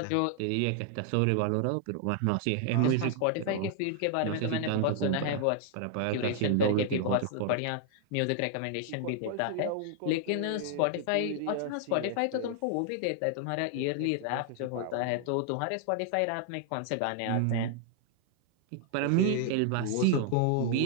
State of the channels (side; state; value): both; different; correlation 0.00